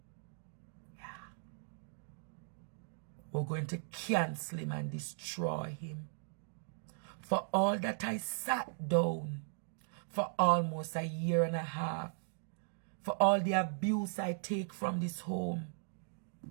Yeah. We're going to cancel him and destroy him. For all that I sat down for almost a year and a half. For all the abuse I take from this home.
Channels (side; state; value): left; silent; digital silence